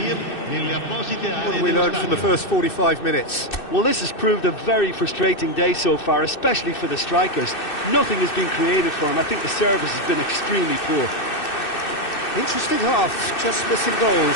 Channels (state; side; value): late; right; 2.6 ms